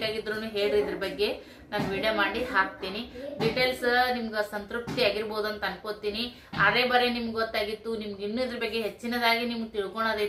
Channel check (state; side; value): identical; both; correlation 1.00